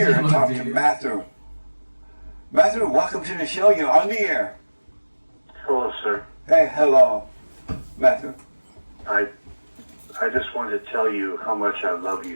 and talk to Matthew. Matthew, welcome to the show. You're on the air. Hello, sir. Hey, hello, Matthew. I just wanted to tell you how much I love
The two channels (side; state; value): both; inverted; correlation -1.00